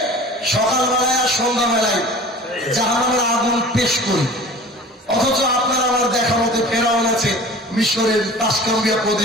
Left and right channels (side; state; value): both; normal; correlation 0.41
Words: সকালবেলায় আর সন্ধ্যাবেলায় জাহান্নামের আগুন পেশ করি। অথচ আপনারা আমার দেখা মতে ফেরাউন আছে মিশরের তাসকাম্বিয়া